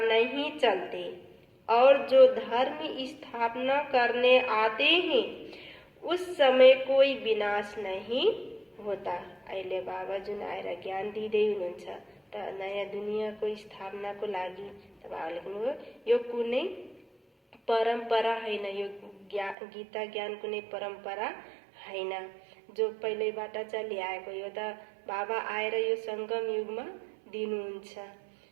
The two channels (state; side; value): drops out; left; at 19.6 s